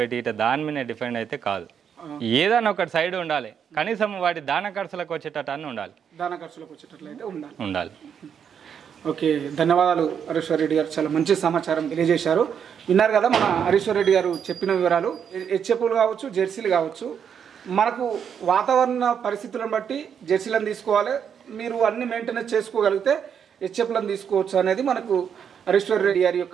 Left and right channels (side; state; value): left; quieter; 7.8 dB